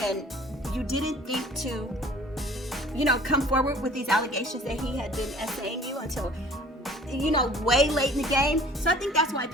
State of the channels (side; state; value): both; normal; correlation 0.50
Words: and you didn't think to, come forward with these allegations that he had been essaying you until way late in the game. So I think that's why